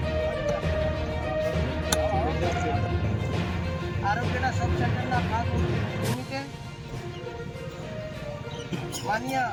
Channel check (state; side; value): identical; both; correlation 1.00